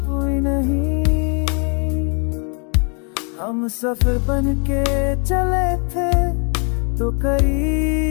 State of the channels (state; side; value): quieter; right; 39.8 dB